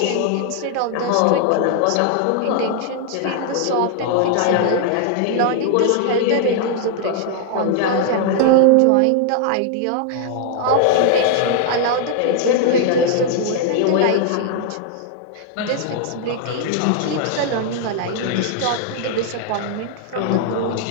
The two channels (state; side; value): different; both; correlation 0.00